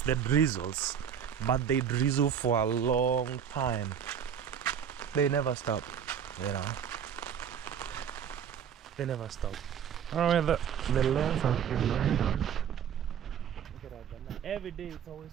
the drizzles, but they drizzle for a long time. They never stop, you know. They never stop. Oh, the lens has been going down. Look at that. Every day it's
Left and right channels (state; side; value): quieter; left; 8.3 dB